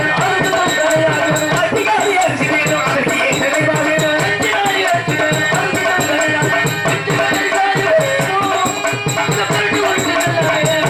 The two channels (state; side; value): identical; both; correlation 1.00